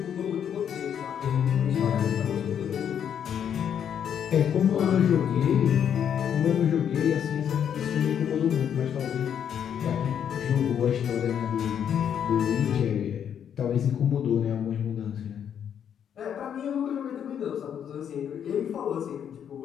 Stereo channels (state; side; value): quieter; right; 8.7 dB